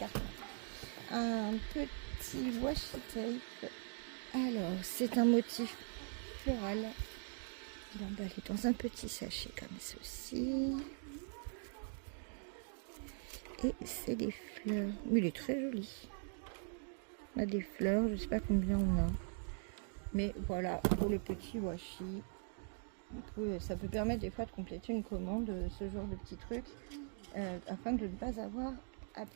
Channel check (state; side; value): silent; left; 50 dB below the other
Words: Un petit washi tape. Alors, c'est un motif floral. Il est emballé dans un petit sachet comme ceci. Et c'est des fleurs. Mais il est très joli. On a des fleurs, je ne sais pas combien on a. Mais voilà, pour le petit washi. Ça peut permettre des fois de compléter une commande, ce genre de petits trucs, afin de ne pas avoir à